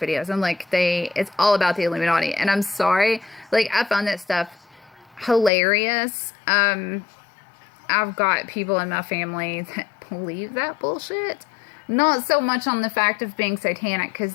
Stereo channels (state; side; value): drops out; right; at 5.5 s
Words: I'm like, it's all about the Illuminati. And I'm sorry, like, I found that stuff hilarious. I've got people in my family that believe that bullshit. Not so much on the fact of being satanic, because